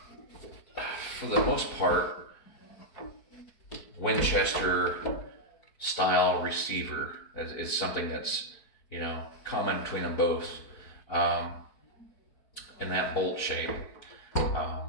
for the most part, Winchester style receiver is something that's, you know, common between them both, in that bolt shape.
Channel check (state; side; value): late; right; 4.5 ms